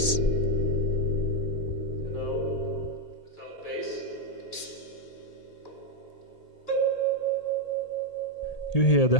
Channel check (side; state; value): right; late; 1.8 ms